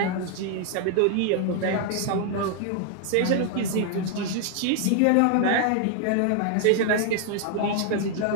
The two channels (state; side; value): different; both; correlation 0.00